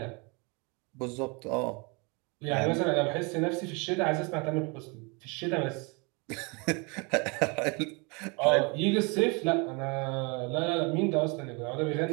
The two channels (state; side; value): quieter; left; 30.6 dB